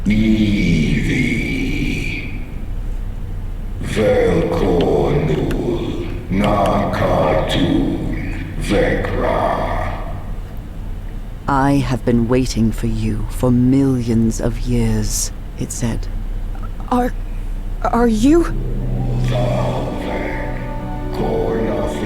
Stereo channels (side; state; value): both; identical; correlation 1.00